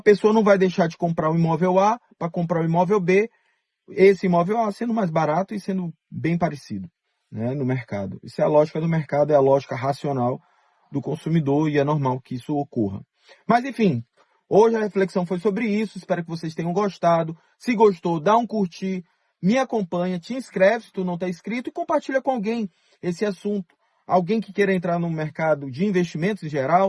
não vai deixar de comprar o imóvel A para comprar o imóvel B, esse imóvel A sendo mais barato e sendo bem parecido, né, no mercado. Isso é a lógica do mercado, é a lógica racional do consumidor e é normal que isso ocorra. Mas enfim, hoje a reflexão foi sobre isso, espero que vocês tenham gostado. Se gostou, dá um curtir, me acompanha, te inscreve se tu não está inscrito e compartilha com alguém esse assunto. Alguém que queira entrar no mercado de investimentos em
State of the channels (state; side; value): identical; both; correlation 1.00